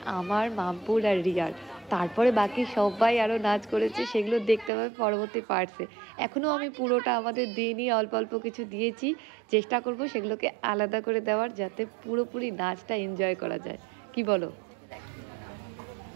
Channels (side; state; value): left; drops out; at 4.7 s